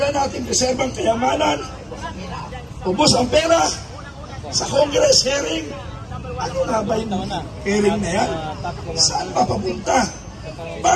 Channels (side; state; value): both; identical; correlation 1.00